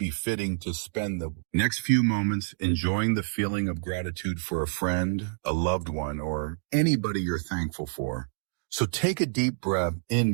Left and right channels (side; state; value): left; silent; digital silence